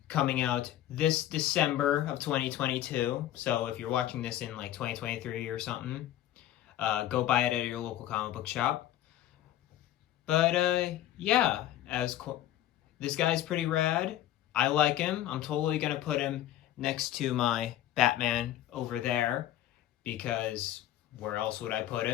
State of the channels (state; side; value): quieter; right; 13.0 dB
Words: coming out this December of 2022. So if you're watching this in like 2023 or something, go buy it at your local comic book shop. But yeah, this guy's pretty rad. I like him. I'm totally going to put him next to my Batman over there, because where else would I put